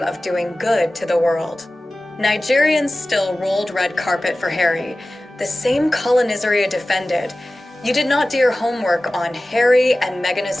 doing good to the world. Nigerians still rolled red carpet for Harry, the same colonizer you defended. You did not do your homework on Harry and Meghan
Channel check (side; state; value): both; normal; correlation 0.96